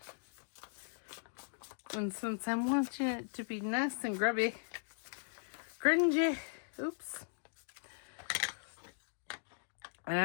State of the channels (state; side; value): silent; right; digital silence